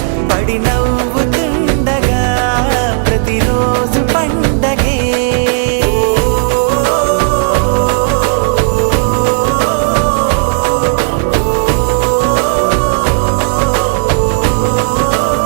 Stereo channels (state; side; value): silent; left; digital silence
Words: పడి నవ్వుతుండగా ప్రతిరోజు పండగే